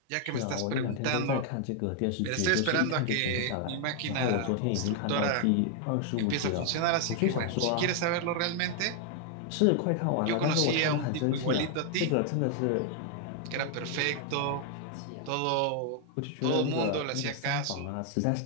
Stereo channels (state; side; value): different; both; correlation 0.00